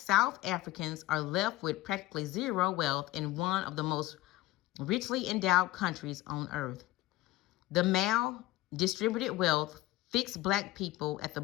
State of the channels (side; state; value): right; quieter; 16.9 dB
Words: Africans are left with practically zero wealth in one of the most richly endowed countries on earth. The mal-distributed wealth fixed Black people at the